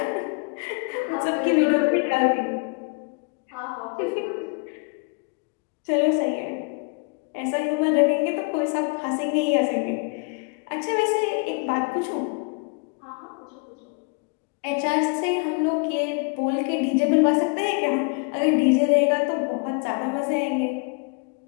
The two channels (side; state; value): right; quieter; 33.7 dB